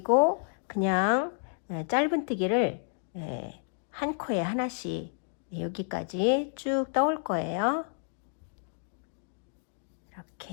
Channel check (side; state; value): right; silent; digital silence